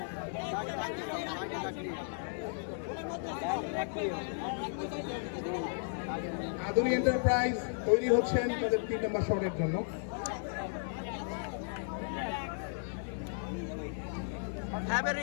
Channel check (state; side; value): silent; right; digital silence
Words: আধুনিক এন্টারপ্রাইজ তৈরি হচ্ছেন তাদের 3 নম্বর শটের জন্য। Have a